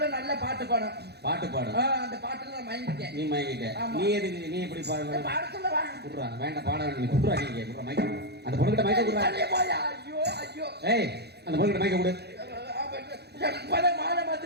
நல்ல பாட்டு பாடும். அந்த பாட்டுல நான் மயங்கிட்டேன். நீ மயங்கிட்ட. நீ எதுக்கு? நீ எப்படி பாடுற? பாட சொல்லவா? குடுறா, வேண்டாம் பாட வேண்டாம். நீ குடுறா, நீங்க குடுறா மைக்க. அந்த பொண்ணுகிட்ட மைக்க குடுறா. ஐயோ. ஏய், அந்த பொண்ணுகிட்ட மைக்க குடு. மாலை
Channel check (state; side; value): late; left; 0.48 ms